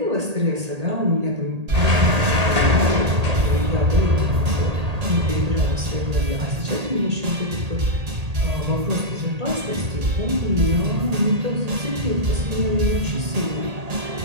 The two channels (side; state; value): left; late; 1.8 ms